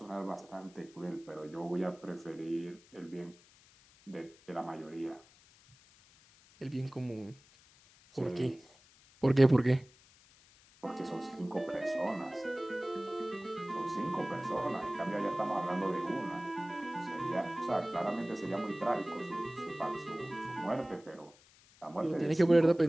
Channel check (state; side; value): noise; left; hiss, 27 dB below the sound